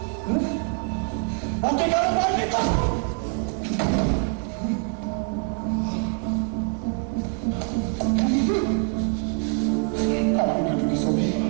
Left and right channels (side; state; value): left; quieter; 34.3 dB